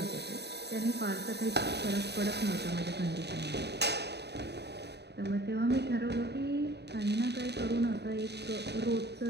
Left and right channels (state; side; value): late; left; 0.49 ms